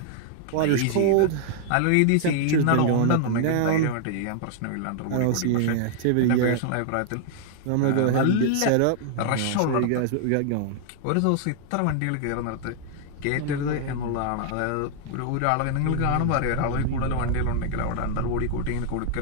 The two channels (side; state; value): both; different; correlation 0.00